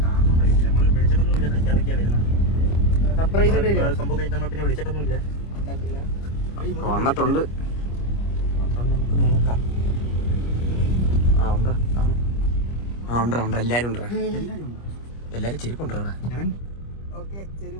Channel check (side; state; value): right; late; 25 ms